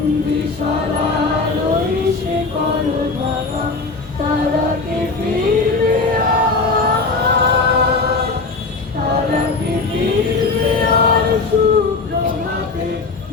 ওই শিকল ভাঙা, তারা কি ফিরবে আর, তারা কি ফিরবে আর সুপ্রভাতে,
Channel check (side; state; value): right; quieter; 3.9 dB